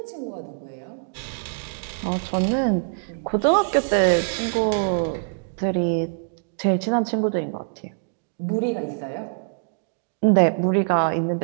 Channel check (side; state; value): left; silent; digital silence